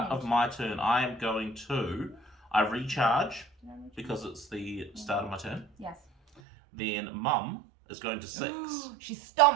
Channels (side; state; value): left; drops out; at 6.4 s